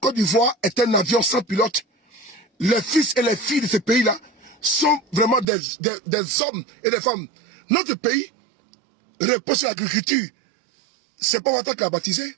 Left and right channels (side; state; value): left; drops out; at 5.5 s